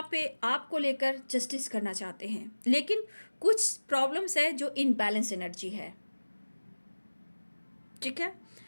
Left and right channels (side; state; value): both; inverted; correlation -1.00